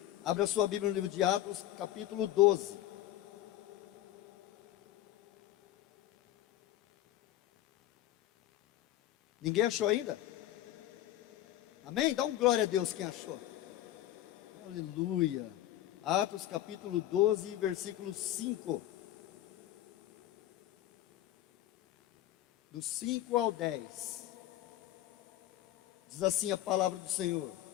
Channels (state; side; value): quieter; right; 13.8 dB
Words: Abra a sua Bíblia no livro de Atos, capítulo 12. Ninguém achou ainda? Amém? Dá um glória a Deus quem achou. Aleluia. Atos capítulo 12, versículo 5. Do 5 ao 10. Diz assim a palavra do Senhor.